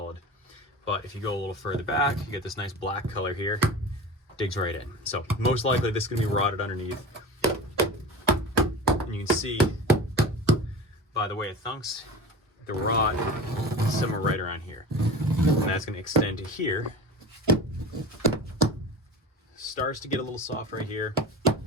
But if you go a little further back, you get this nice black color here, digs right in. So most likely this is gonna be rotted underneath. And you can see by the way it thunks, the rot is somewhere right around here. And that's gonna extend to here. Starts to get a little soft right here,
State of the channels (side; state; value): both; normal; correlation 0.33